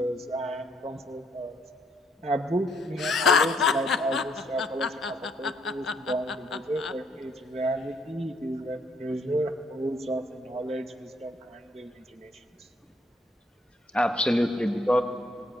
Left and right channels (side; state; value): both; normal; correlation 0.69